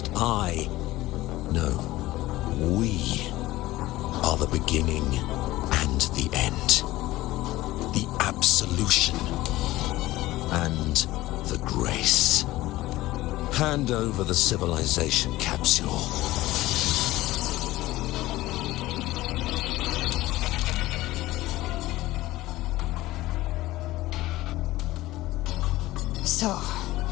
we are the beginning and the end. The absolution and the grace. Hand over the civilization capsule. So,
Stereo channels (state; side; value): quieter; right; 17.4 dB